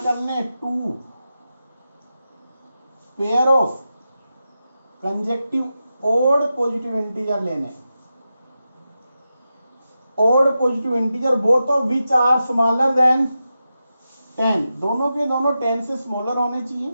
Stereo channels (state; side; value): inverted; both; correlation -0.90